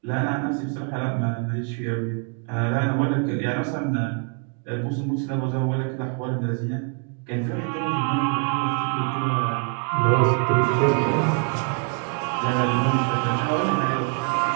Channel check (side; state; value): left; quieter; 37.9 dB